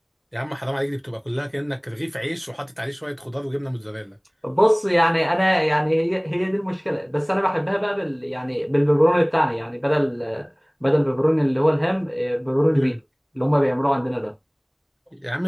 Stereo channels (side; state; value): both; identical; correlation 1.00